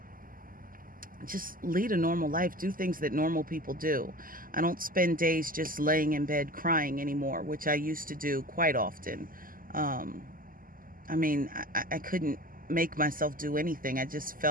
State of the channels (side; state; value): left; late; 0.41 ms